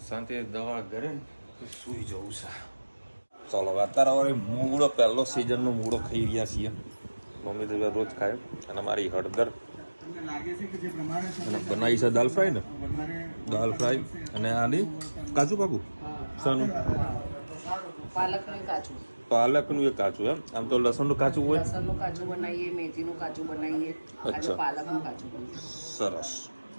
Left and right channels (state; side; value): inverted; both; correlation -1.00